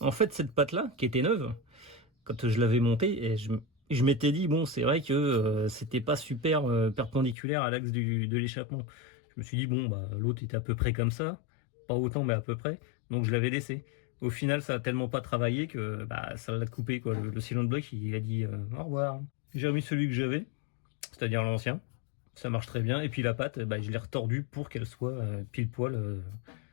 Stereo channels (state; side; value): drops out; right; at 7.4 s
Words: fait, cette patte là, qui était neuve, quand je l'avais montée, et je m'étais dit, bon, c'est vrai que c'était pas super perpendiculaire à l'axe de l'échappement. Je me suis dit, bon, bah, l'autre était à peu près comme ça, pas autant, mais à peu près, donc je l'avais laissé. Au final, ça a tellement pas travaillé que ça l'a coupé, quoi. Le cylinder block, il a dit au revoir. J'ai remis celui que j'avais, c'est-à-dire l'ancien. Ça marche très bien. Et puis la patte, je l'ai retordue pour qu'elle soit pile poil